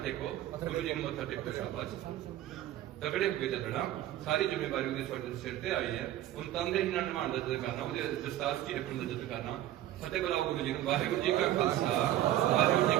ਟੇਕੋ, ਗੁਰੂ ਜੀ ਨੂੰ ਮੱਥਾ ਟੇਕੋ। ਸ਼ਾਬਾਸ਼, ਤਗੜੇ ਹੋ ਕੇ ਚੱਲਣਾ। ਸਾਰੀ ਜ਼ਿੰਮੇਵਾਰੀ ਉਹਦੇ ਤੁਹਾਡੇ ਸਿਰ ਤੇ ਆਈ ਹੈ। ਹੁਣ ਤੰਦੇ ਹੀ ਨਾਲ ਨਿਭਾਉਣ ਦਾ ਜਦ ਕਰਨਾ, ਉਹਦੇ ਦਸਤਾਰ ਕੀ ਰੱਖਣ ਦਾ ਜਦ ਕਰਨਾ। ਫਤਿਹ ਬੁਲਾਓ ਗੁਰੂ ਜੀ ਨੂੰ। ਵਾਹਿਗੁਰੂ ਜੀ ਕਾ ਖਾਲਸਾ ਵਾਹਿਗੁਰੂ ਜੀ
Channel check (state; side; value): quieter; left; 13.3 dB